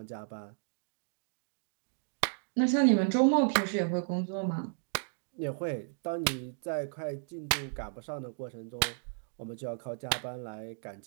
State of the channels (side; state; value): left; silent; digital silence